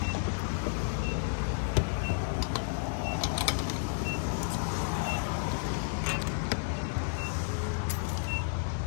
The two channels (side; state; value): right; silent; digital silence